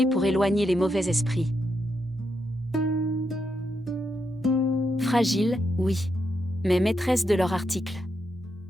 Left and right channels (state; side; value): normal; both; correlation 0.82